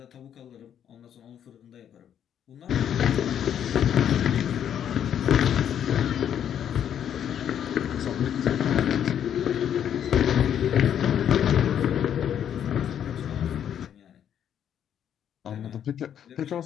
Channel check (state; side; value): quieter; right; 9.4 dB